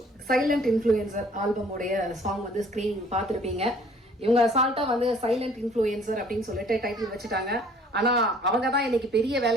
சைலண்ட் இன்ஃப்ளூயன்சர் ஆல்பமுடைய சாங் வந்து ஸ்க்ரீன் பார்த்துருப்பீங்க. இவங்க அசால்ட்டா வந்து சைலண்ட் இன்ஃப்ளூயன்சர் அப்படின்னு சொல்லிட்டு டைட்டில் வச்சுட்டாங்க. ஆனா அவங்க தான் இன்னைக்கு பெரிய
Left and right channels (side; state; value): both; normal; correlation 0.56